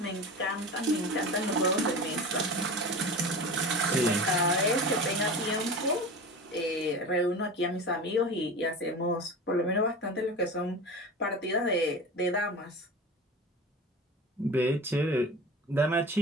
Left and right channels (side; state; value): both; normal; correlation 0.32